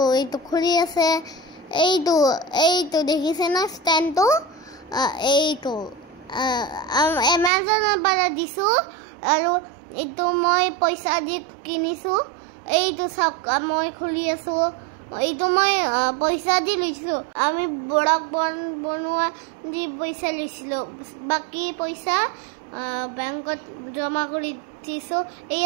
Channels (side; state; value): left; drops out; at 7.5 s